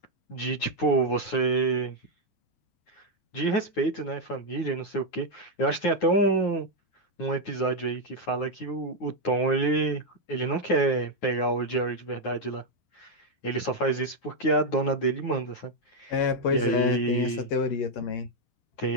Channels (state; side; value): late; right; 9.5 ms